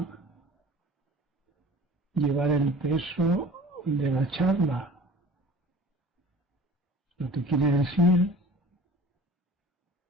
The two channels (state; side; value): normal; both; correlation 0.44